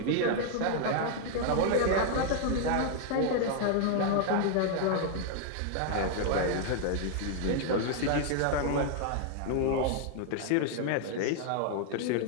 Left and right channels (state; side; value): different; both; correlation 0.00